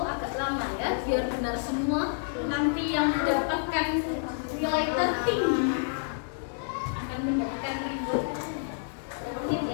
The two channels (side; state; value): right; silent; digital silence